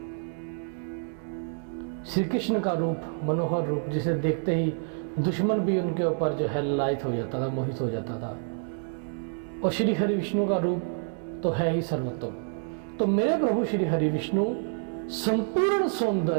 श्री कृष्ण का रूप, मनोहर रूप, जिसे देखते ही दुश्मन भी उनके ऊपर जो है ललायित हो जाता था, मोहित हो जाता था, और श्री हरि विष्णु का रूप तो है ही सर्वोत्तम। तो मेरे प्रभु श्री हरि विष्णु संपूर्ण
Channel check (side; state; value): left; silent; digital silence